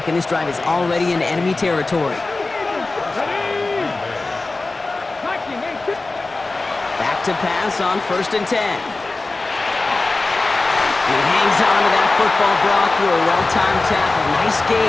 and this drive is already in enemy territory. Back to pass on 1st and 10. He hangs on to that football, Brock, through a well-timed tackle. Nice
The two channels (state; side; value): quieter; right; 3.3 dB